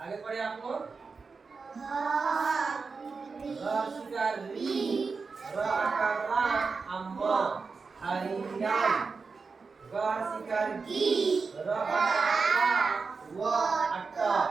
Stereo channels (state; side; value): quieter; left; 4.7 dB